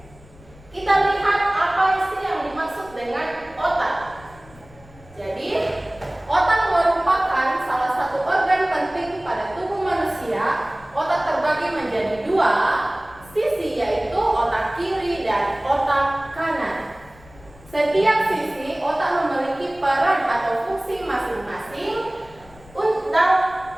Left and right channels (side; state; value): left; noise; rumble, 23 dB below the sound